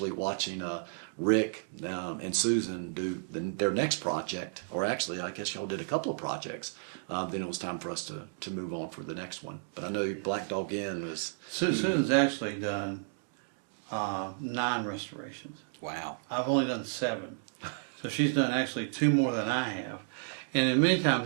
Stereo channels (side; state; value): left; silent; digital silence